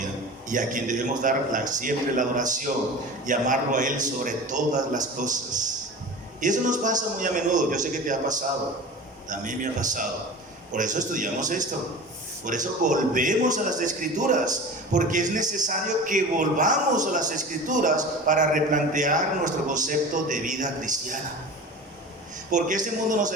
y a quien debemos dar siempre la adoración y amarlo a Él sobre todas las cosas. Y eso nos pasa muy a menudo. Yo sé que te ha pasado, también me ha pasado. Por eso estudiamos esto, por eso volvemos a las Escrituras, porque es necesario que volvamos a las Escrituras para replantear nuestro concepto de vida cristiana. Porque este mundo nos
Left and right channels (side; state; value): both; normal; correlation 0.35